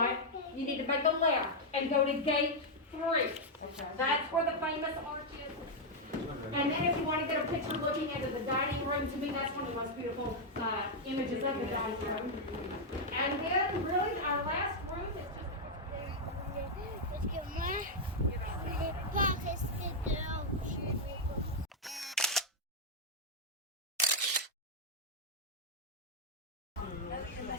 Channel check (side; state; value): both; normal; correlation -0.01